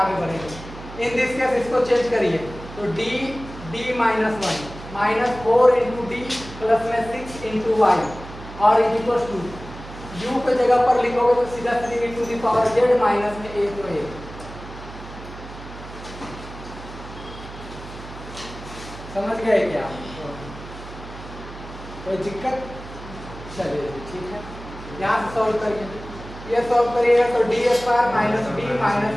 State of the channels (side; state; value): right; noise; hum, 14 dB below the sound